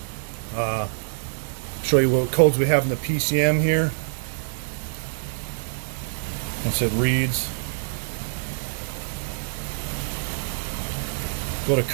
Show you what codes we have in the PCM here. Once it reads. Go to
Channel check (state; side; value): silent; left; digital silence